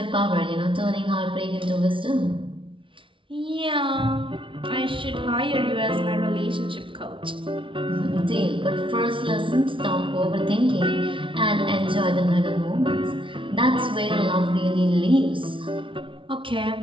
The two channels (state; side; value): late; left; 0.25 ms